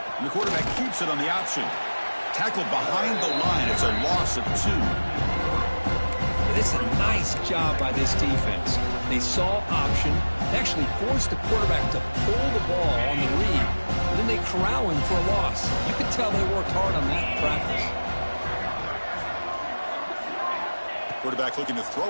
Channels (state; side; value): inverted; both; correlation -1.00